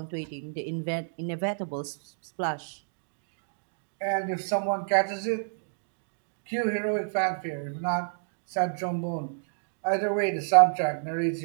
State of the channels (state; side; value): silent; left; digital silence